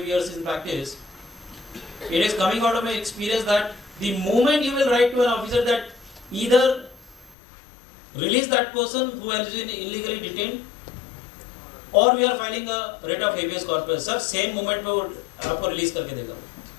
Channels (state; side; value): drops out; right; at 7.4 s